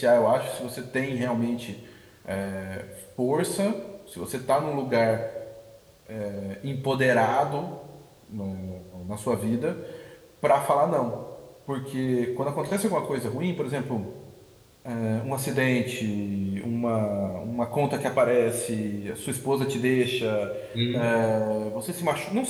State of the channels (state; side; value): identical; both; correlation 1.00